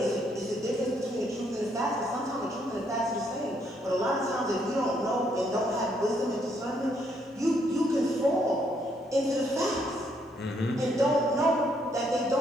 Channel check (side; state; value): both; normal; correlation 0.72